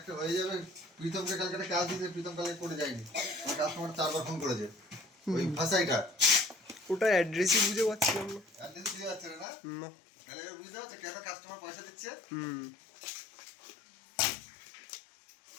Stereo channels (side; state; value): right; drops out; at 9.5 s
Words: হয়ে যাবে। প্রীতমকে কালকে একটা কাজ দিতে, প্রীতম কালকে করে যায়নি। আমার কাস্টমার 4 বার ফোন করেছে ওই ভাষাইটা। ওটা অ্যাড্রেসই বুঝে পাচ্ছিলাম না। অ্যাড্রেস বুঝতে পারছে না? না। তাহলে এবার বুঝতে পারছে কেন কাস্টমার পয়সা দিচ্ছে? হুম।